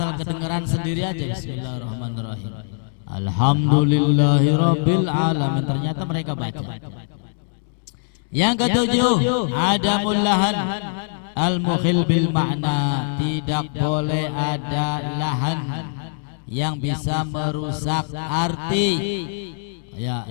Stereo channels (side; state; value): right; silent; digital silence